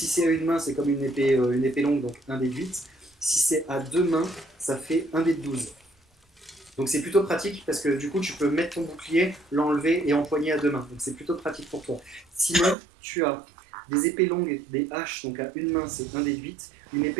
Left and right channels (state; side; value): drops out; left; at 12.8 s